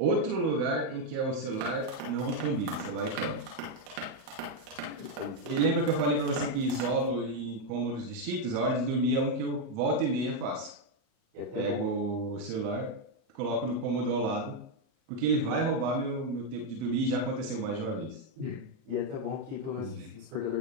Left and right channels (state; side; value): late; left; 38 ms